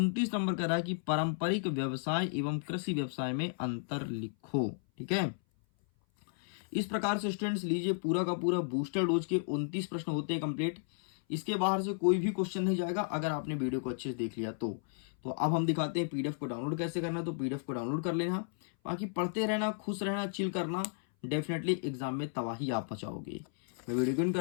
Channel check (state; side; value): silent; right; 55 dB below the other